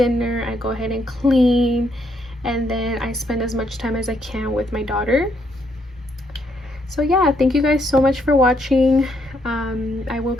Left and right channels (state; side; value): normal; both; correlation 0.73